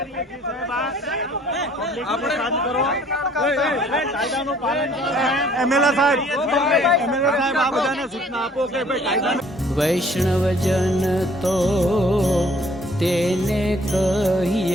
છીએ સાહેબ, આપણે શાંત કરો, કાયદાનું પાલન કરો. એમએલએ સાહેબ આ બધાને સૂચના આપો કે ભાઈ કાયદાનું. વૈષ્ણવજન તો તેને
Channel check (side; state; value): both; normal; correlation 0.58